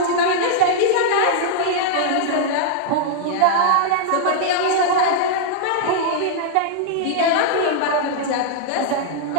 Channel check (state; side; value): different; both; correlation -0.01